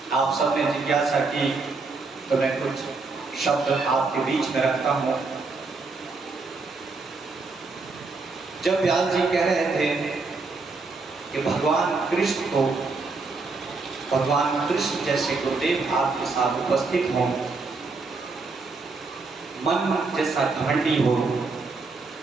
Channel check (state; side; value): quieter; left; 4.0 dB